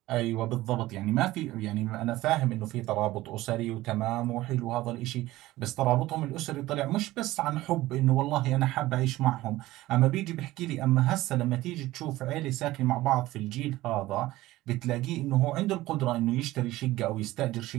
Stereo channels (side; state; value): left; quieter; 17.2 dB